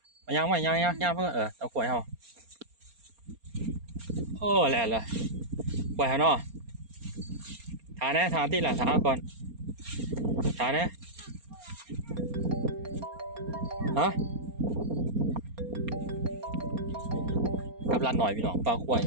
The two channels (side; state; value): left; late; 4.3 ms